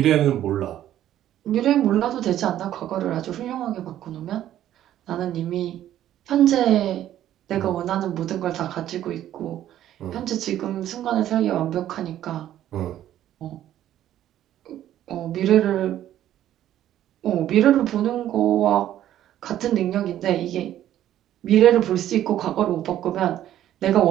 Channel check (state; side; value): quieter; left; 12.1 dB